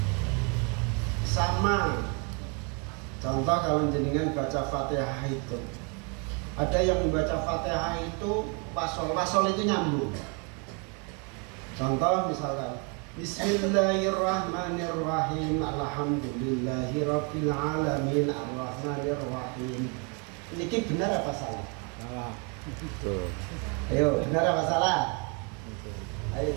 sama. Contoh kalau jenengan baca Fatihah itu, ada yang membaca Fatihah itu wasol itu nyambung. Contoh misalkan Bismillahirrahmanirrahim, alhamdulillahirabbil alamin, arrahmanirrahim. Ini benar apa salah? Salah. Betul. Ayo, benar apa salah? Betul. Ayo,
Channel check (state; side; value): quieter; left; 35.2 dB